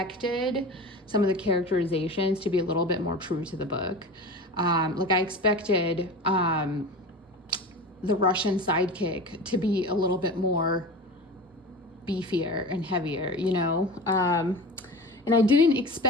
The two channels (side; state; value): both; normal; correlation 0.32